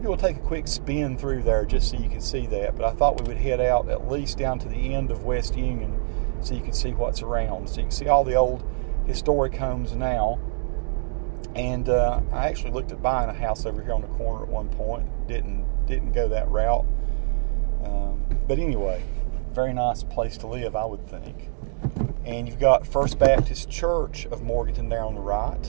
we'll take a quick spin through there just so you can see that. But I thought we would head out at least down to the end of West Union so you can see what's around. So you can see all the old historic homes now. And I actually looked at buying a house over here on the corner at one point. Didn't go that route. But anyway, very nice place to live, I would think. And you've got First Baptist Church of Morganton there on the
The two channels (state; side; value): silent; left; digital silence